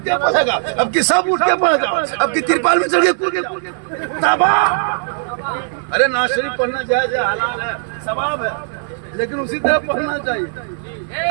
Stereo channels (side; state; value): left; silent; digital silence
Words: के पढ़ेगा, अब की सब उठ के पढ़ेगा, अब की तिरपाल में चढ़ के तबाह। अरे नाज शरीफ पढ़ना जायज है, हलाल है, सवाब है, लेकिन उसी तरह पढ़ना चाहिए।